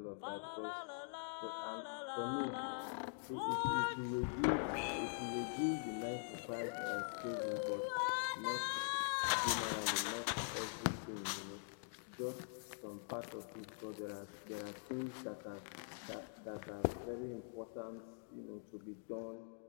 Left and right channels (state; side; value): silent; right; digital silence